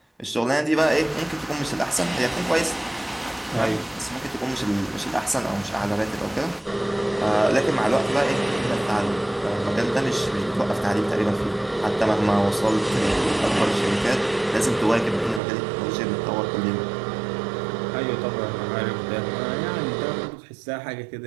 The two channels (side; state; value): left; drops out; at 15.4 s